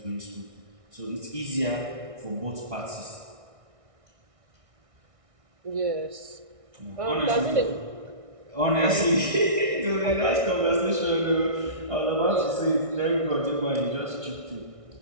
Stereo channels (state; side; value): late; left; 1.6 ms